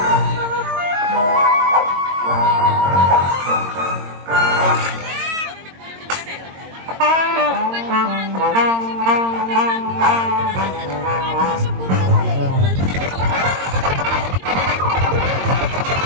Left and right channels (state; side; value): late; left; 22 ms